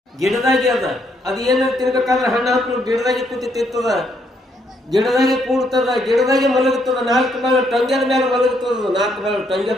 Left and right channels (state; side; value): normal; both; correlation 0.73